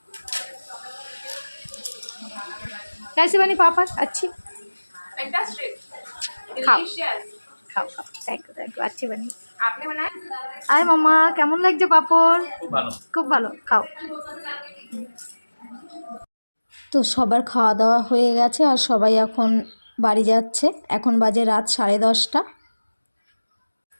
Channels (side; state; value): both; inverted; correlation -1.00